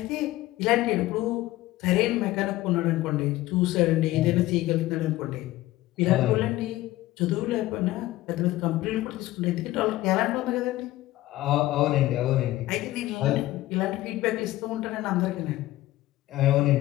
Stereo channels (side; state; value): right; quieter; 16.6 dB